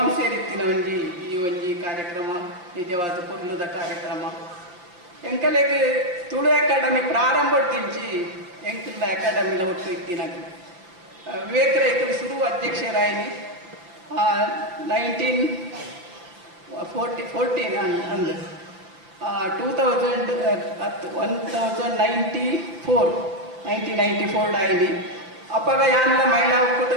ಒಂಜಿ ಈ ಒಂಜಿ ಕಾರ್ಯಕ್ರಮ ನಿಜವಾದ ಪೊರ್ಲುದ ಕಾರ್ಯಕ್ರಮ. ಎಂಕಲೆಗ್ ತುಳು ಅಕಾಡೆಮಿ ಪ್ರಾರಂಭದಿಂಚಿ ಎಂಕಲ್ದ ಅಕಾಡೆಮಿಲ ಒಟ್ಟು ಇತ್ತಿನಾಗ ವಿವೇಕ ರೈಕಲ್ ಶುರು ಅಧ್ಯಕ್ಷರಾಯಿನಿ 1914 ಅಂದು 1994 ಆಯ್ನಿ. ಅಪ್ಪಗ ಯಾನೆಲ್ಲ ಮಹಿಳಾ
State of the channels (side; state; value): left; late; 5.7 ms